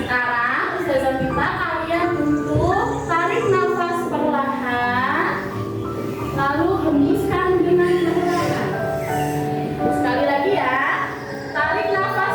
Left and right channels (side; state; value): both; identical; correlation 1.00